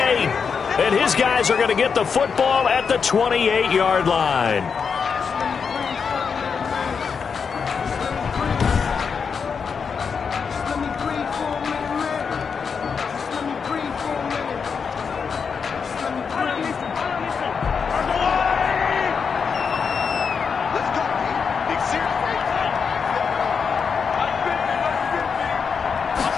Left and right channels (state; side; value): quieter; right; 6.0 dB